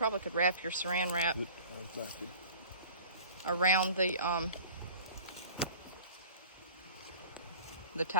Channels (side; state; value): both; inverted; correlation -0.44